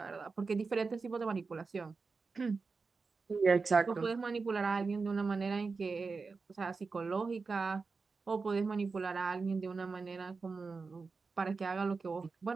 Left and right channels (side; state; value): left; quieter; 4.4 dB